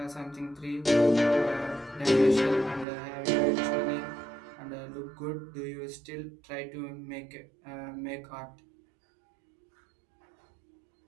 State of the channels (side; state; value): left; drops out; at 2.9 s